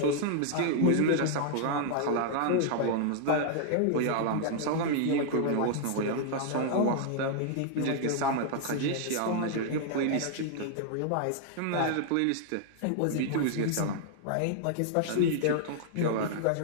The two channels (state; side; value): different; both; correlation -0.01